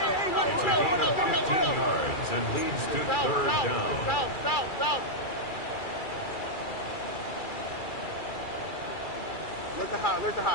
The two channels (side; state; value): right; late; 2.3 ms